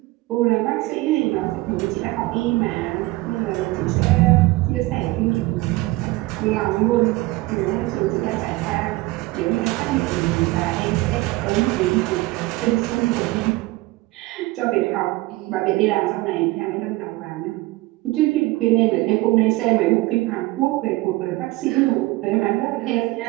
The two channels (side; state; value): left; quieter; 20.5 dB